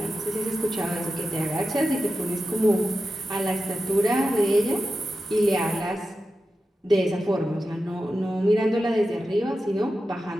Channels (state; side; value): normal; both; correlation 0.91